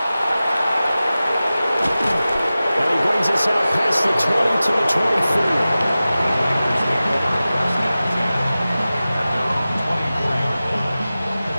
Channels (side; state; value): both; inverted; correlation -0.96